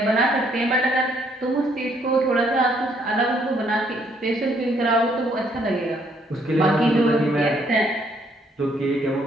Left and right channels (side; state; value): both; normal; correlation 0.68